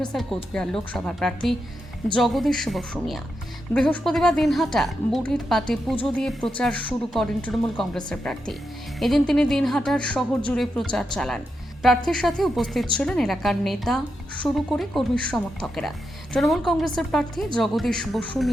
কোচবিহার লোকসভার প্রার্থী জগদীশ বসু মিয়া। বৃহস্পতিবার দিনহাটা বুড়ির পাটে পুজো দিয়ে প্রচার শুরু করেন তৃণমূল কংগ্রেসের প্রার্থী। এদিন তিনি দিনহাটার শহর জুড়ে প্রচার চালান। প্রার্থীর সাথে উপস্থিত ছিলেন এলাকার নেতা শুরু করে কর্মী সমর্থকেরা। তৃণমূল কংগ্রেসের প্রার্থী জগদীশ বসু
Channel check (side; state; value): both; normal; correlation 0.85